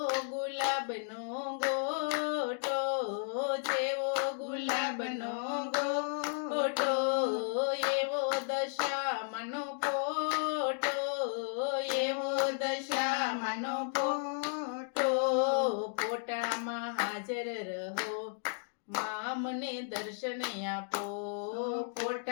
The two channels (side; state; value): right; silent; digital silence